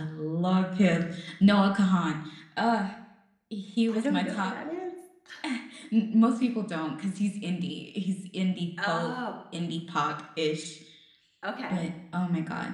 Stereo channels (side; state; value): both; identical; correlation 1.00